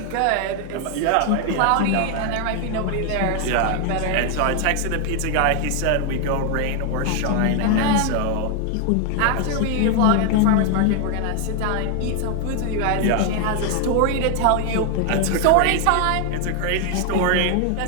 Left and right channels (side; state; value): both; different; correlation 0.00